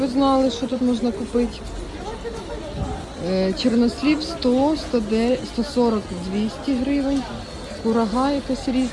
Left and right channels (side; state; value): both; identical; correlation 1.00